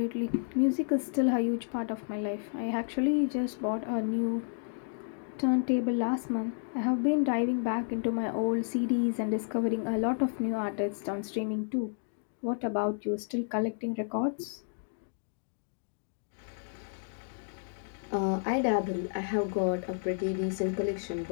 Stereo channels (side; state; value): right; silent; digital silence